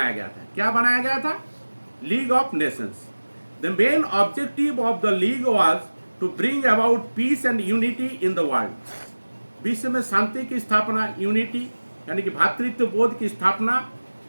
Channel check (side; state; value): both; inverted; correlation -1.00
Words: गया था। क्या बनाया गया था, League of Nations. The main objective of the league was to bring about peace and unity in the world. विश्व में शांति की स्थापना, यूनिटी यानी कि भातृत्व बोध की स्थापना